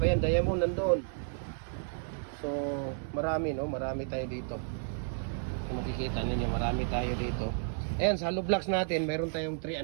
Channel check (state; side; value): silent; left; digital silence